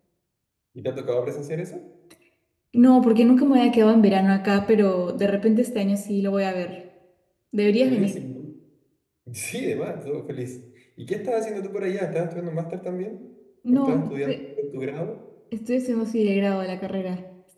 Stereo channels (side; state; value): both; identical; correlation 1.00